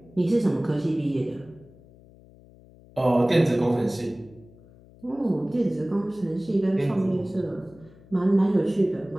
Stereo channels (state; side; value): noise; left; hum, 24 dB below the sound